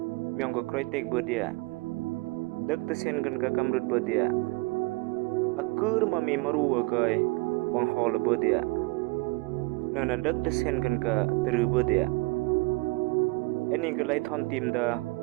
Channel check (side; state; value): left; quieter; 25.4 dB